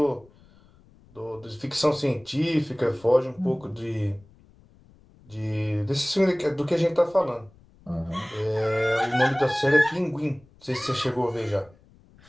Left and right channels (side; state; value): left; noise; rumble, 28 dB below the sound